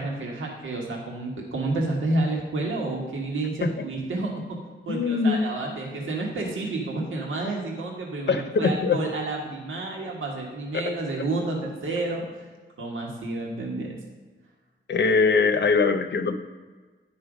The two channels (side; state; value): both; normal; correlation 0.46